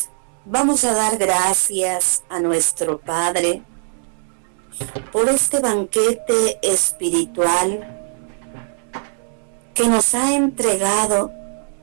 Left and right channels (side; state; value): left; silent; digital silence